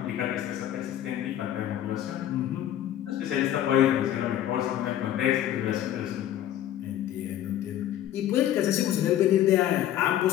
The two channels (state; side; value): quieter; right; 11.8 dB